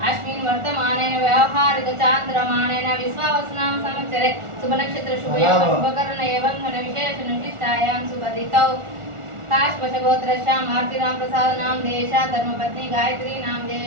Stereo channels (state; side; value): late; left; 1.4 ms